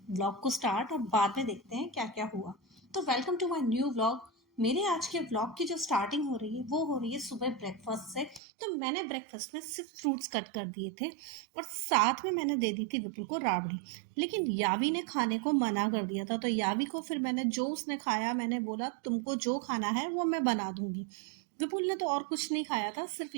व्लॉग को स्टार्ट और बाद में देखते हैं क्या क्या हुआ। तो welcome to my new vlog. मेरे आज के व्लॉग की जो स्टार्टिंग हो रही है वो हो रही है सुबह ब्रेकफास्ट से। तो मैंने ब्रेकफास्ट में सिर्फ फ्रूट्स कट कर दिए थे और साथ में मैंने दे दी थी विपुल को राबड़ी। लेकिन यावी ने खाने को मना कर दिया था, तो यावी को फिर मैंने जो उसने खाया मैंने बोला तुमको जो खाना है वो मैं बना दूंगी। विपुल ने तो और कुछ नहीं खाया था, सिर्फ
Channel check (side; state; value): left; drops out; at 8.4 s